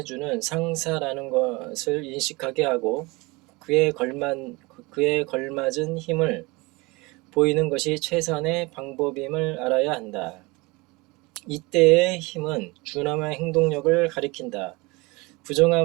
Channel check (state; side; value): quieter; left; 24.6 dB